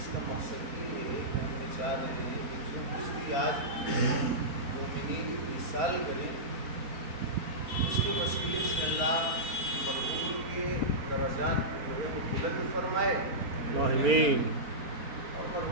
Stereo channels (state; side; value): late; left; 4.3 ms